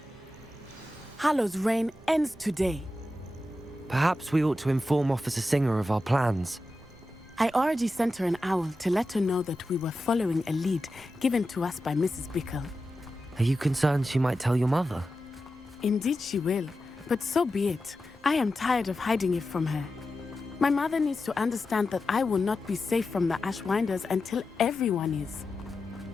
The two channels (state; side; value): normal; both; correlation 0.91